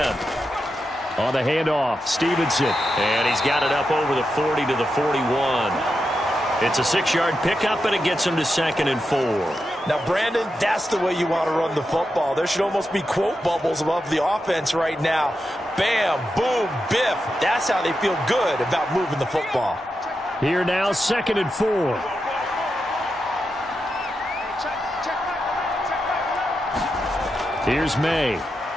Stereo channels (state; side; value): normal; both; correlation 0.87